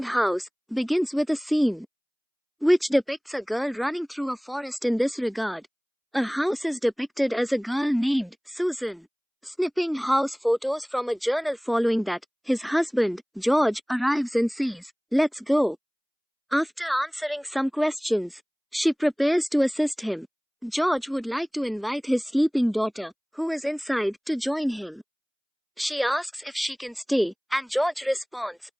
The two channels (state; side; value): identical; both; correlation 1.00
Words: House, begins with a scene which depicts a girl running through a forest. In this regard, a house is depicted as a girl named Susan, snipping house photos from a journal. Following that, his husband, George, arrives and says, "Let's go." After answering some questions, she prepares to assist him. George would like to invite his sleeping daughter, who is inside, to join him. She asks if she can stay, and George responds,